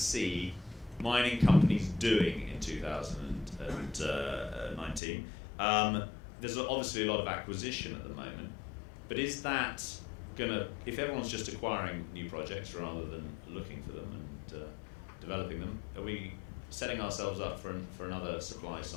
mining companies doing in 2019? There's obviously a lot of acquisition at the moment, but is that if everyone's just acquiring new projects rather than looking for them and developing them, are we setting ourselves up for another supply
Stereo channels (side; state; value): right; drops out; at 5.0 s